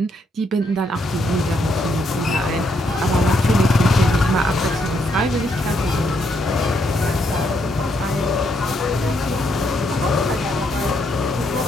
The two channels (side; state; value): both; normal; correlation 0.75